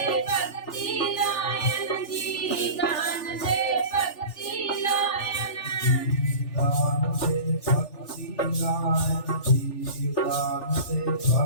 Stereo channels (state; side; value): late; right; 3.4 ms